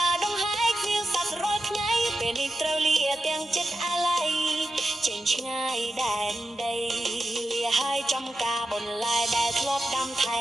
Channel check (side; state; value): both; normal; correlation 0.90